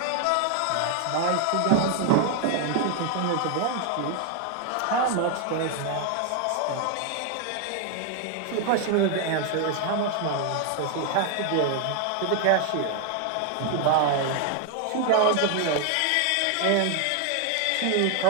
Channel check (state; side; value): different; both; correlation 0.00